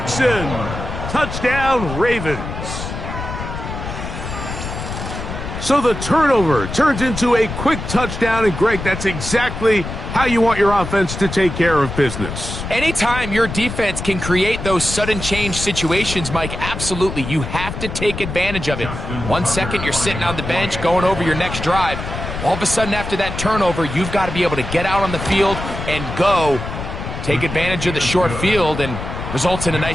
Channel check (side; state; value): left; noise; rumble, 7 dB below the sound